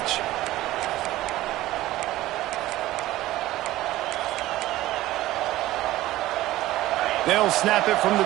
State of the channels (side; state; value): left; quieter; 16.1 dB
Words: They'll snap it from